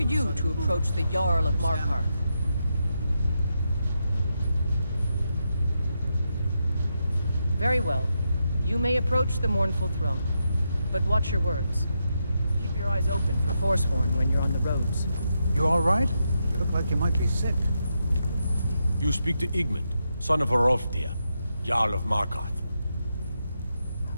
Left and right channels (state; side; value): inverted; both; correlation -0.84